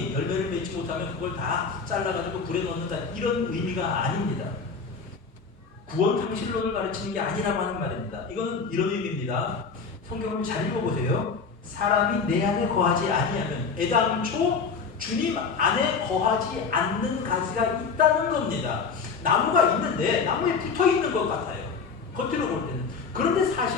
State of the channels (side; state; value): right; quieter; 5.3 dB